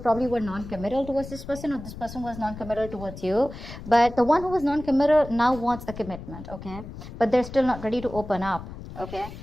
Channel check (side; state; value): left; noise; rumble, 12 dB below the sound